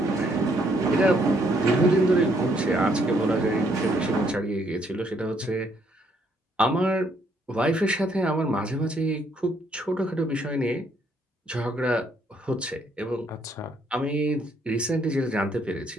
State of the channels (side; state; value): both; normal; correlation 0.70